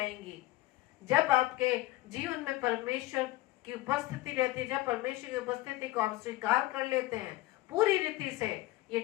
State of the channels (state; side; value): quieter; right; 17.9 dB